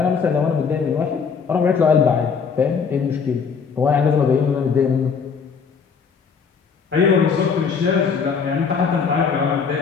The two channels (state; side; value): quieter; right; 6.0 dB